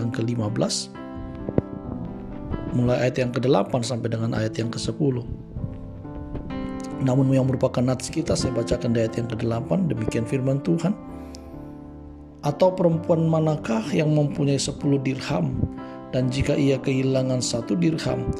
ke-15, mulai ayat yang ke-8 sampai dengan ayat yang ke-10. Namun yang merupakan nats kita, saya bacakan di ayat yang ke-8. Demikian firman Tuhan. Atau perempuan manakah yang mempunyai 10 dirham, dan jika ia kehilangan 1 dirham,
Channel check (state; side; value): identical; both; correlation 1.00